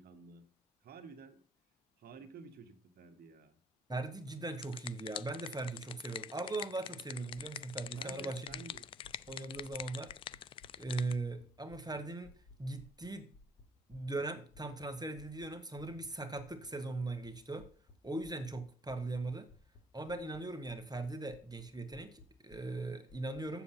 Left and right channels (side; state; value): both; normal; correlation 0.67